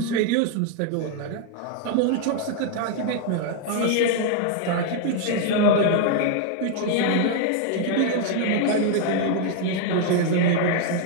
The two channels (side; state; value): both; different; correlation 0.00